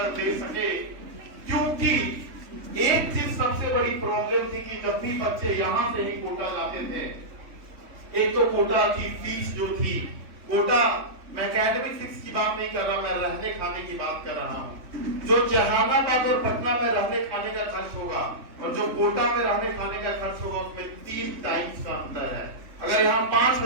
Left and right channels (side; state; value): left; late; 3.5 ms